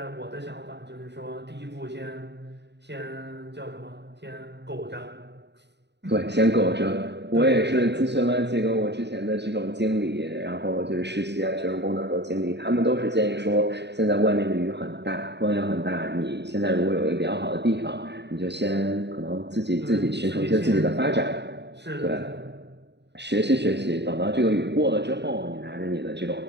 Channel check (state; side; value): late; left; 0.50 ms